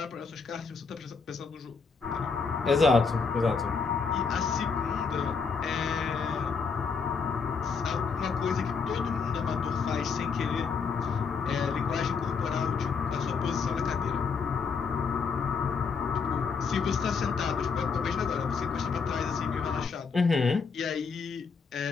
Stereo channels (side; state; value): right; quieter; 5.3 dB